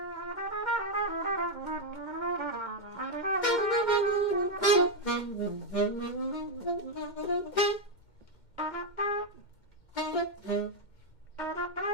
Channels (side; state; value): right; late; 2.1 ms